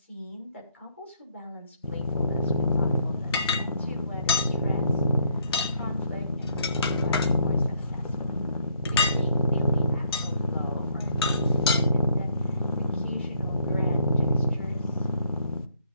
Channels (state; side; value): inverted; both; correlation -0.68